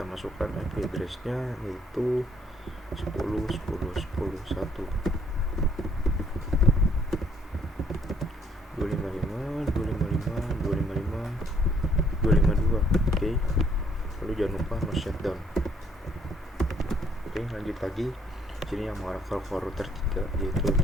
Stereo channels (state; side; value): normal; both; correlation 0.65